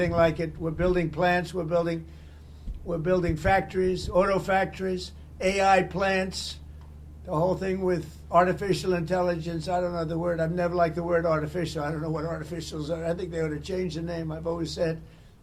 like it. We're building plants. We're building factories, auto factories, AI plants, the whole thing with artificial intelligence. I don't know the word. I've never liked the word artificial. I don't know what artificials are. I think they ought to change the name. I've always said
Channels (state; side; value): identical; both; correlation 1.00